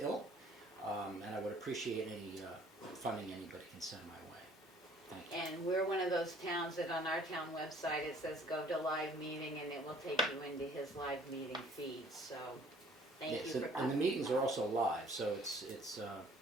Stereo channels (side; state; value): both; normal; correlation 0.56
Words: and I would appreciate any funding anybody can send my way. Thank you. And we're one of those towns that on our town website, it says go to live meeting and it will take you into his live meeting feed, so thank you Yes, for, and the meetings are also live, so it's